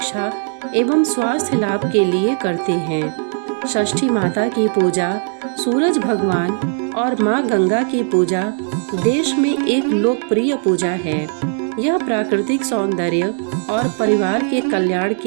एवं स्वास्थ्य लाभ के लिए करते हैं। षष्ठी माता की पूजा सूरज भगवान और माँ गंगा की पूजा देश में एक लोकप्रिय पूजा है। यह प्राकृतिक सौंदर्य और परिवार के कल्याण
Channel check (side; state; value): left; silent; 63 dB below the other